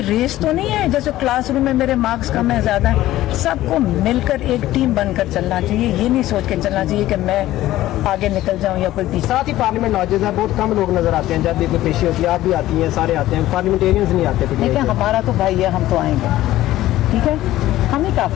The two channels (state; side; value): quieter; right; 15.0 dB